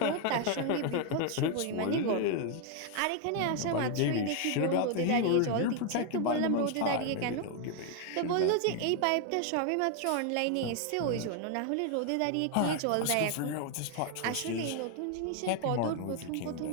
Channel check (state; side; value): different; both; correlation 0.01